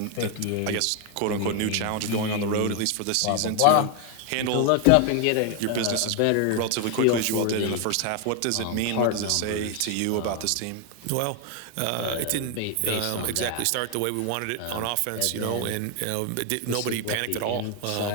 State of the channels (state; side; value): different; both; correlation 0.01